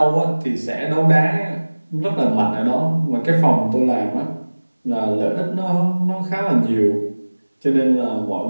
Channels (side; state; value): both; inverted; correlation -1.00